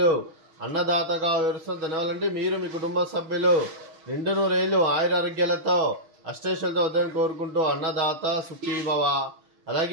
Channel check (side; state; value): left; late; 6.4 ms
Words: అన్నదాతగా వివరిస్తున్న ధన్యవాదాలండి. మీరు మీ కుటుంబ సభ్యులు నిండు నూరేళ్లు ఆయురారోగ్యాలతో అష్టైశ్వర్యాలతో వద్దని కోరుకుంటూ అన్నదాత సుఖీభవ.